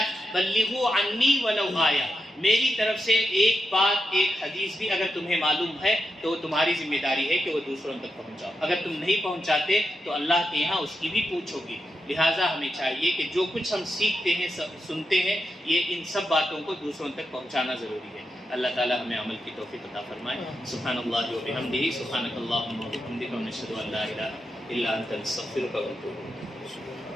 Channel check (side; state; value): both; normal; correlation 0.86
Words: بلغوا عنی ولو آیہ، میری طرف سے ایک بات، ایک حدیث بھی اگر تمہیں معلوم ہے تو تمہاری ذمہ داری ہے کہ وہ دوسروں تک پہنچاؤ۔ اگر تم نہیں پہنچاتے تو اللہ کے یہاں اس کی بھی پوچھ ہوگی۔ لہٰذا ہمیں چاہیے کہ جو کچھ ہم سیکھتے ہیں، سنتے ہیں، یہ ان سب باتوں کو دوسروں تک پہنچانا ضروری ہے۔ اللہ تعالیٰ ہمیں عمل کی توفیق عطا فرمائے۔ سبحان اللہ و بحمدہ، سبحانک اللہم و بحمدک، ونشہد ان لا الہ الا انت، نستغفرک ونتوب الیک۔